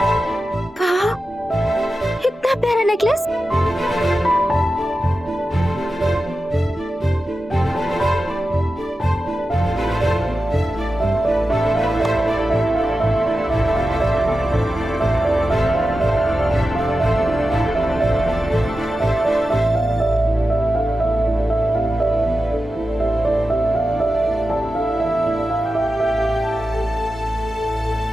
इतना प्यारा नेकलेस।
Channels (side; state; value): both; normal; correlation 0.92